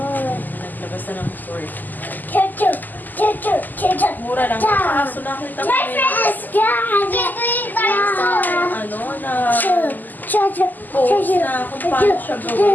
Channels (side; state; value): right; late; 0.085 ms